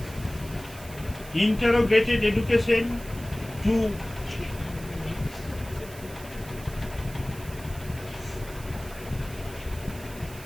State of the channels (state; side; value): noise; right; hiss, 17 dB below the sound